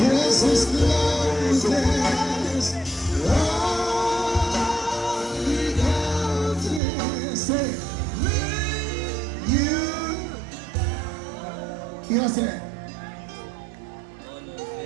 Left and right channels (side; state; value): left; drops out; at 6.8 s